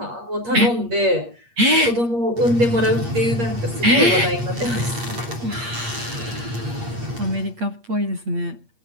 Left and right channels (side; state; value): left; late; 8.5 ms